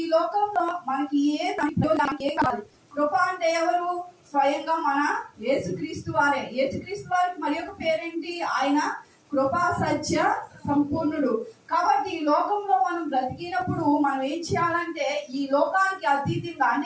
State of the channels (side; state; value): both; identical; correlation 1.00